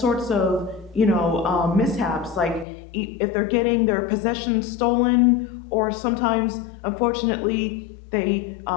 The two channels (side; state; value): right; drops out; at 2.7 s